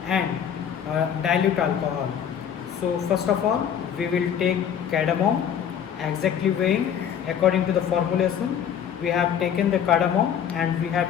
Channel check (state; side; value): quieter; right; 8.7 dB